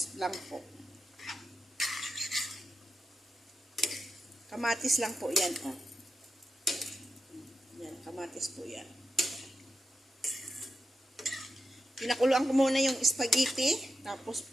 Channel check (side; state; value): both; normal; correlation 0.88